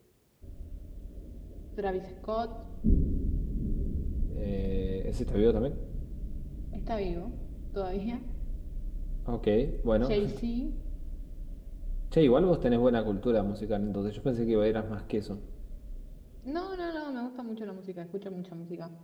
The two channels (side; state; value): both; identical; correlation 1.00